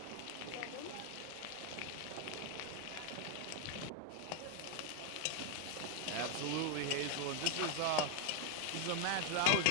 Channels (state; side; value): different; both; correlation 0.00